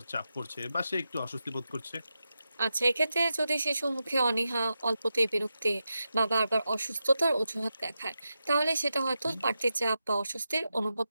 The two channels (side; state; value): both; inverted; correlation -0.89